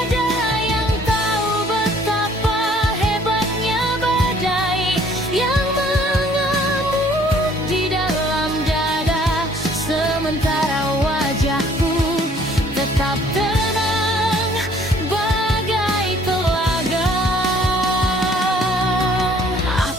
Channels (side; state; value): both; normal; correlation 0.58